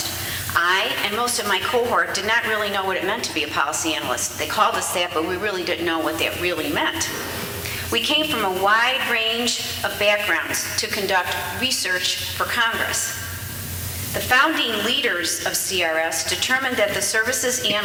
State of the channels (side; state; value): both; identical; correlation 1.00